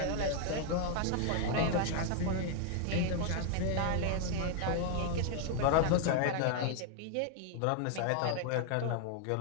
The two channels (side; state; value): both; different; correlation 0.00